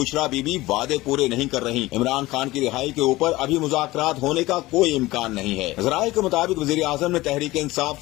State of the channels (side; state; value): right; quieter; 18.8 dB